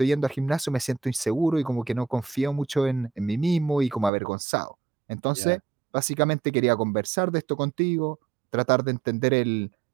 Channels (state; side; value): drops out; left; at 4.1 s